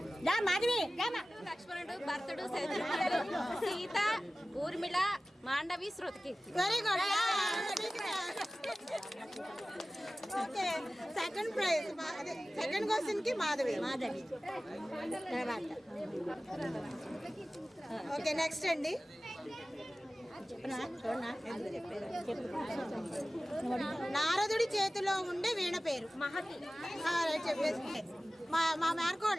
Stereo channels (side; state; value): both; normal; correlation 0.96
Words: లక్ష్మణుడు, భరతుడు, శత్రుఘ్నుడు, Sita, Urmila, Mandavi, Shrutakirti. Very good. Okay. Second prize second question కి మాధవి. ఓకే నెక్స్ట్ అండి. నారదుడి చేతిలో ఉండే వీణ పేరు మహతి. చెప్పేసి మా